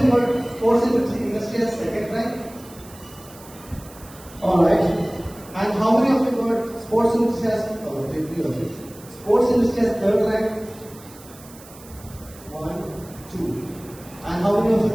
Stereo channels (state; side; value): noise; right; hiss, 21 dB below the sound